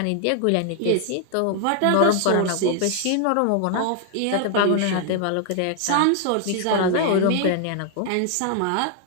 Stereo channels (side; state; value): both; different; correlation 0.00